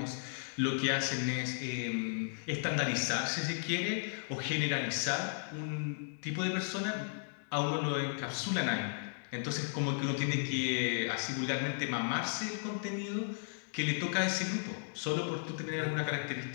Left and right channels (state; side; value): silent; right; digital silence